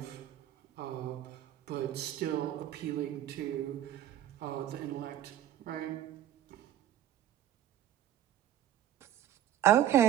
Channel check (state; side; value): quieter; left; 11.8 dB